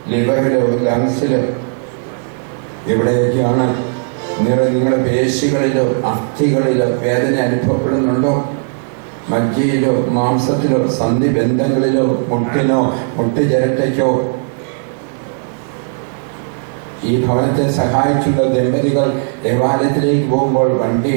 ലിവറിലോ ലങ്സിലോ എവിടെയൊക്കെയാണ് നിങ്ങളുടെ പേശികളിലോ അസ്ഥികളിലോ വേദന അനുഭവപ്പെടുന്നുണ്ടോ? മജ്ജയിലോ മാംസത്തിലോ സന്ധിബന്ധങ്ങളിലോ മുട്ടിനോ മുട്ടുചിരട്ടയ്ക്കോ? ഈ ഭവനത്തെ സഹായിച്ചുള്ള ദമ്പതികൾ ദേവാലയത്തിലേക്ക് പോകുമ്പോൾ വണ്ടി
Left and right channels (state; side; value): silent; left; 57 dB below the other